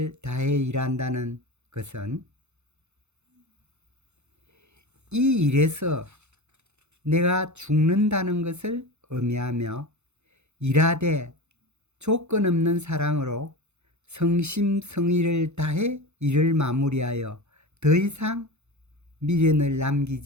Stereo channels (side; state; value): left; late; 0.82 ms